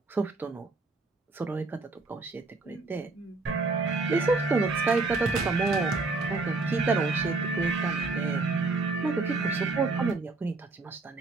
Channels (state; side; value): quieter; left; 3.6 dB